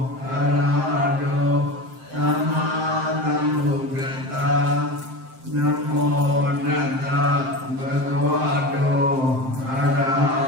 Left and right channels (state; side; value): late; left; 7.6 ms